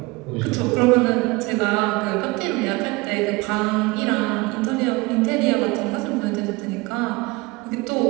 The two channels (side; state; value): left; quieter; 24.1 dB